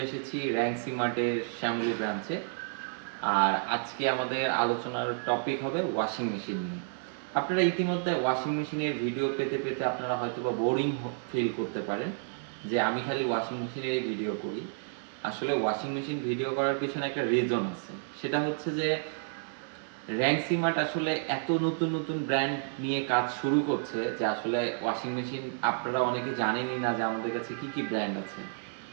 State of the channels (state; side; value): silent; left; digital silence